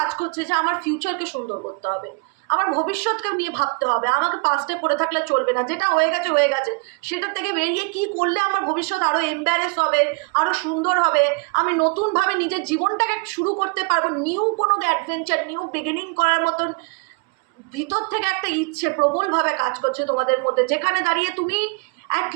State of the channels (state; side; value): quieter; left; 33.6 dB